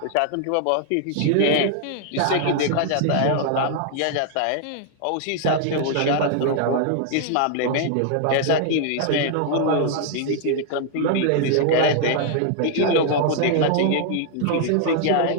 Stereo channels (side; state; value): both; different; correlation 0.00